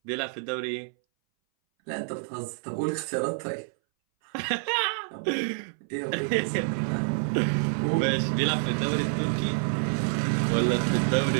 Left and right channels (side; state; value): left; silent; 59 dB below the other